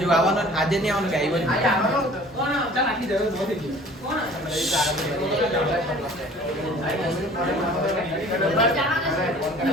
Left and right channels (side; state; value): both; normal; correlation 0.48